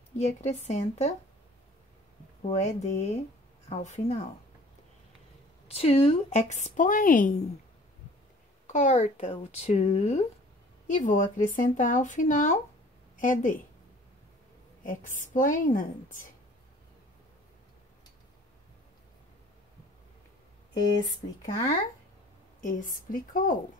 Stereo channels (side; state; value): both; normal; correlation 0.50